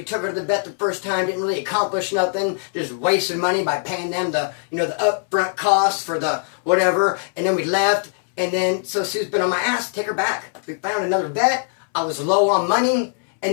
took her to the vet the first time. Didn't really accomplish nothing. Just wasted money by paying them the, you know, the upfront cost for the whatever. And then we left. And then, so Sue's been on my ass to take her back. We found another vet. I was low on money.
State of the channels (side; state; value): right; silent; 65 dB below the other